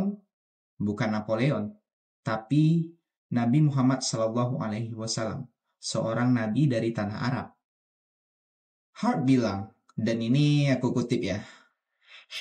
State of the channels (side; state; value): both; identical; correlation 1.00